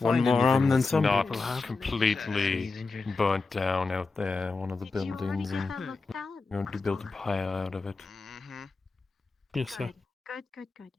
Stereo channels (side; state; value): right; quieter; 3.9 dB